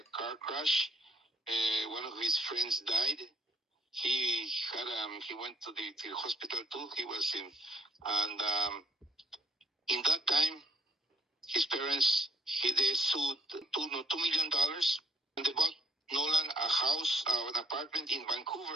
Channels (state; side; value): normal; both; correlation 0.62